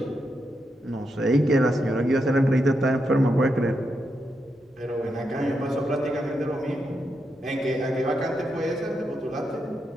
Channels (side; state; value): both; normal; correlation 0.84